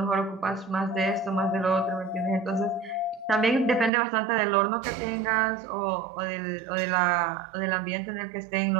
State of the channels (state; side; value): drops out; left; at 3.9 s